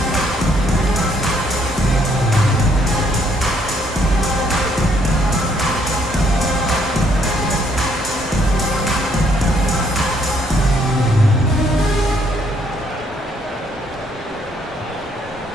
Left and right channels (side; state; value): both; normal; correlation 0.68